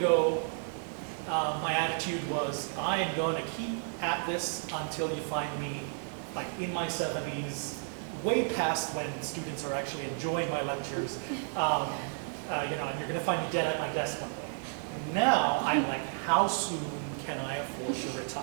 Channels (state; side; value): silent; left; 55 dB below the other